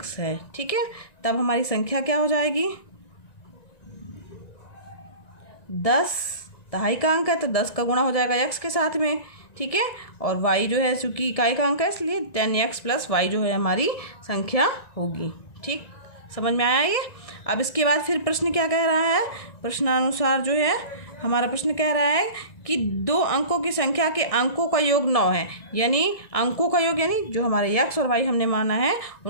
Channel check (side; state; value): right; late; 1.9 ms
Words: है। ठीक है, तब हमारी संख्या क्या हो जाएगी? 10 दहाई का अंक है तो 10 का गुणा हो जाएगा x के साथ में। ठीक है, और y जो है चूंकि इकाई का अंक है इसलिए 10x + y जो है हमारी संख्या होगी। ठीक, समझ में आया ये? अब इसके बाद फिर प्रश्न क्या कह रहा है? प्रश्नानुसार जो है हमारा प्रश्न कह रहा है कि 2 अंकों की संख्या के अंकों का योग 9 है, यानी अंकों का योग यानी जो हमारे x और y हमने माना है